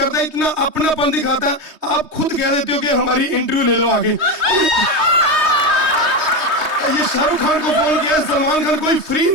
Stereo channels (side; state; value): left; late; 3.2 ms